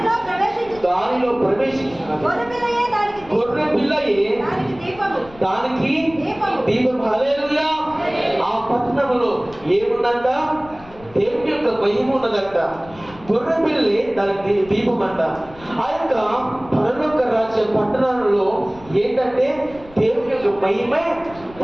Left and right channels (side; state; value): left; noise; rumble, 21 dB below the sound